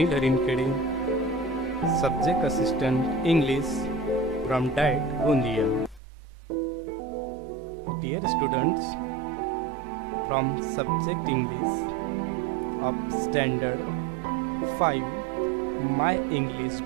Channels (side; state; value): left; drops out; at 6.0 s